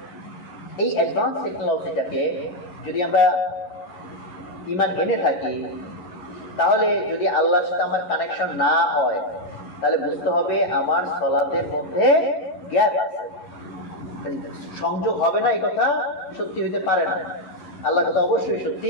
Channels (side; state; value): right; late; 11 ms